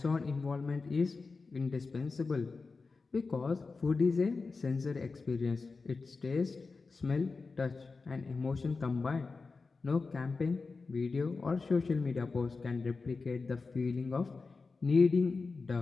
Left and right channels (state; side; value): quieter; right; 4.2 dB